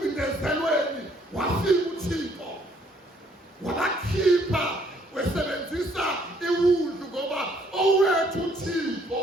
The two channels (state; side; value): normal; both; correlation 0.65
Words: wafika uThixo wabakhipha, wesebenzisa iwundlu, ngoba owethu uThixo